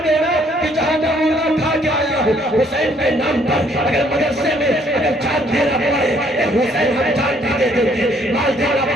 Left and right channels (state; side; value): normal; both; correlation 0.64